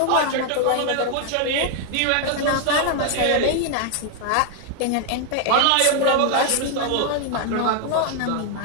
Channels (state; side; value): different; both; correlation 0.00